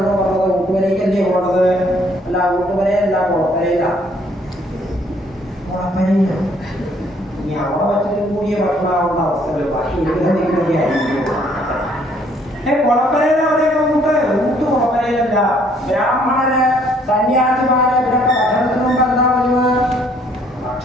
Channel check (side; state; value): both; normal; correlation 0.64